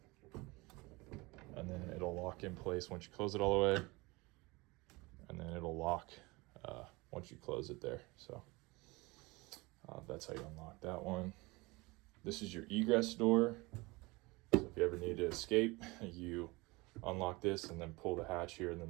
and then it'll lock in place once you close it all the way, and then it'll lock once you close it there. So that's how you unlock that one. This is your egress door. So if you ever need to escape, you unlock this and then pull the hatch here, and then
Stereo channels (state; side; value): quieter; left; 23.8 dB